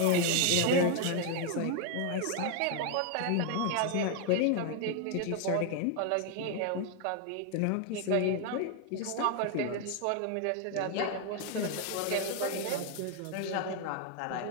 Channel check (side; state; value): both; different; correlation 0.00